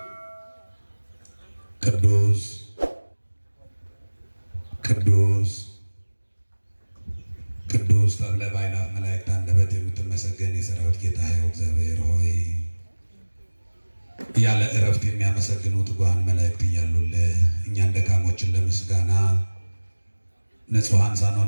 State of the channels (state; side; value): inverted; both; correlation -1.00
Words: ቅዱስ ቅዱስ ቅዱስ ተብለ በአእላፍ መላእክት አንደበት የምትመሰገን የሠራዊት ጌታ ሕያው እግዚአብሔር ሆይ ያለ እረፍት የሚያመሰግኑ ትጉሃን መላእክት እያሉልህ እኛን ደካሞችን ለምስጋና ንጹሐን